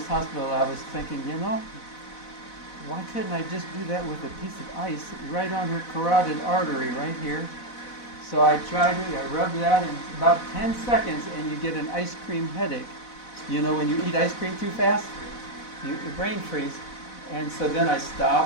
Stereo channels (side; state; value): right; late; 4.0 ms